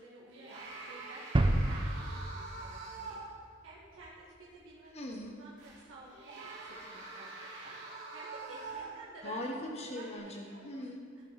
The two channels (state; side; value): normal; both; correlation 0.75